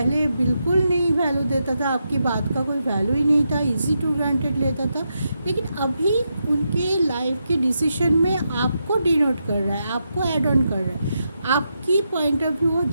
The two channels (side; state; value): both; inverted; correlation -0.84